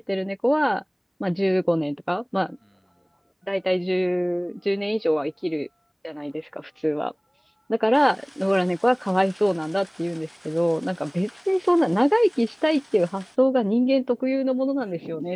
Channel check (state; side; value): identical; both; correlation 1.00